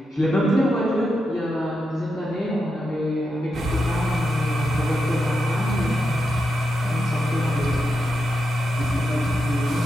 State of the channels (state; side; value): normal; both; correlation 0.86